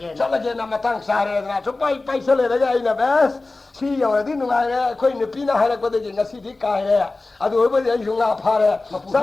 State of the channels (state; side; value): quieter; right; 3.3 dB